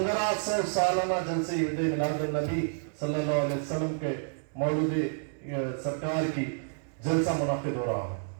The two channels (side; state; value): left; silent; 58 dB below the other